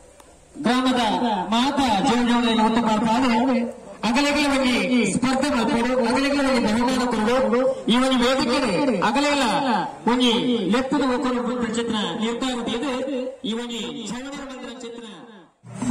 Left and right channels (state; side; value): identical; both; correlation 1.00